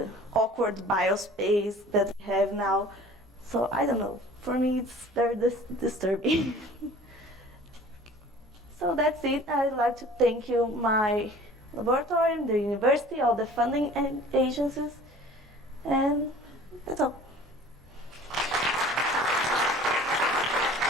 awkward biospace that we have now. So I don't know, for me it's very disturbing. So that's it. I'd like to thank you, my laboratory, the university, all the funding agencies, and that's all.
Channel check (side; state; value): both; normal; correlation 0.46